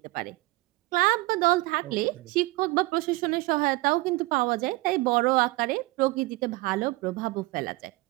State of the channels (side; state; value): left; quieter; 21.8 dB